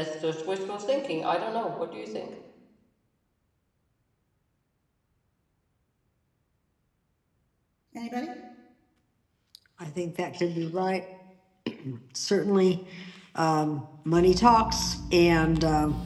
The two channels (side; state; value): both; identical; correlation 1.00